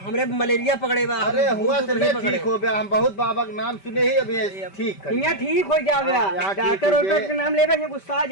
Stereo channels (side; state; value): right; late; 5.1 ms